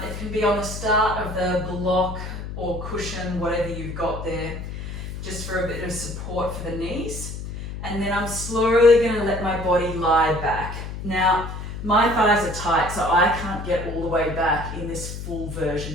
It can be on the start of the block or cushion, whatever you've got there, just for a bit of support for the knees. And then I'm slowly going to let my body lie back. Now, my thighs are tight, so I can't get all the way back in this full version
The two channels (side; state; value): left; noise; hum, 8 dB below the sound